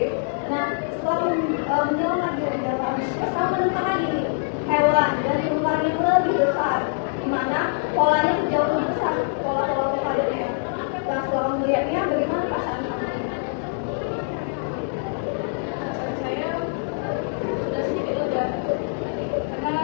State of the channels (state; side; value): silent; right; digital silence